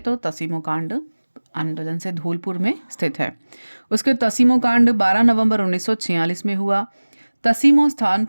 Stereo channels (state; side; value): inverted; both; correlation -1.00